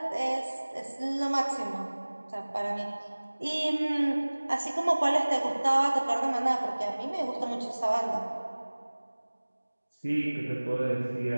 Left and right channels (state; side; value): inverted; both; correlation -1.00